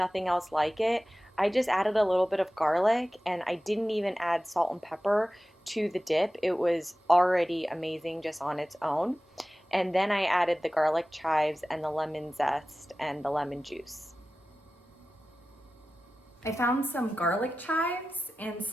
else like it. I just added a little bit of garlic and I didn't even add salt and pepper to the dip. It was already amazing just on its own. And then I added the garlic chives and the lemon zest and the lemon juice. I found some garlic chives and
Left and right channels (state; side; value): normal; both; correlation 0.95